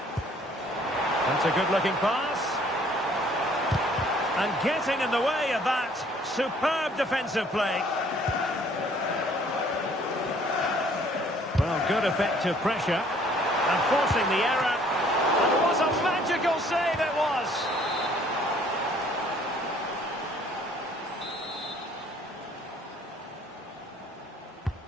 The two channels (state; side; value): normal; both; correlation 0.59